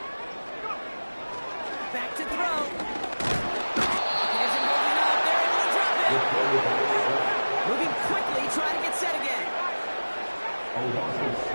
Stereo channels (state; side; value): inverted; both; correlation -1.00